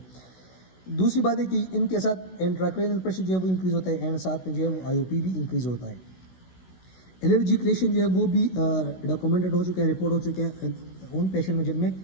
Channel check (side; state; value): right; late; 16 ms